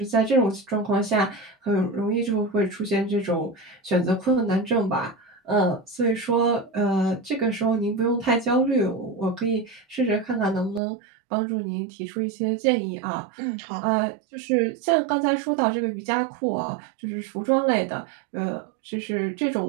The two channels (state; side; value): drops out; left; at 10.8 s